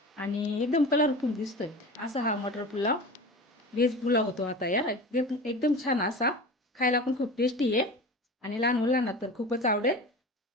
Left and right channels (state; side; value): normal; both; correlation 0.33